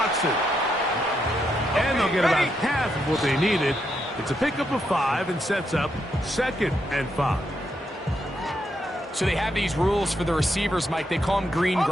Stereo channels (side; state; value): both; normal; correlation 0.80